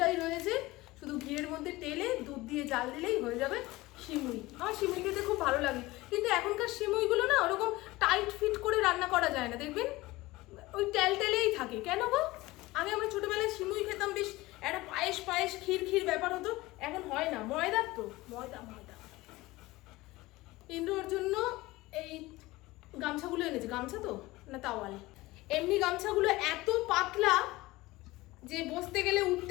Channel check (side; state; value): right; quieter; 19.7 dB